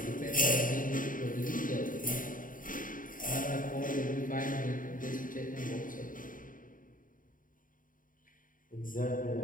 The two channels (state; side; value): late; right; 0.39 ms